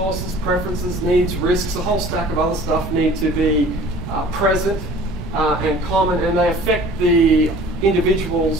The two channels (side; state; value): both; normal; correlation 0.48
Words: preferences, needs, risks, a whole stack of other stuff need to be present and common, and they affect the